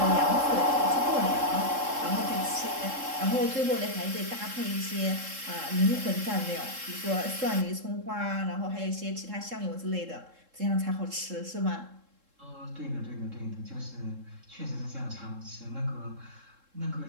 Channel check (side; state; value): left; late; 3.7 ms